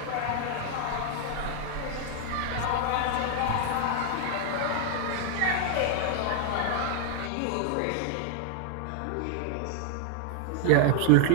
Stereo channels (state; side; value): different; both; correlation 0.00